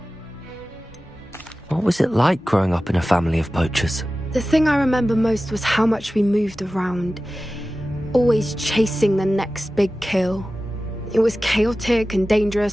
What was it like growing up in a family of poachers? The thing I remember most was how much we moved around, always chasing the next big kill. It was chaotic and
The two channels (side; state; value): both; normal; correlation 0.95